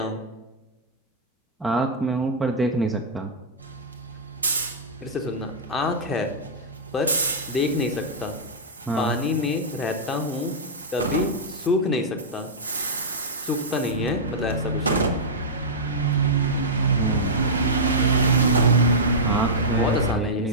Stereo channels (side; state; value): both; normal; correlation -0.11